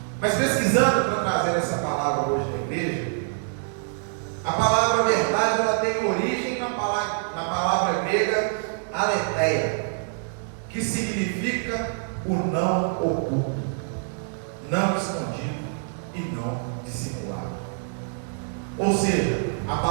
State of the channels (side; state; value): left; silent; 60 dB below the other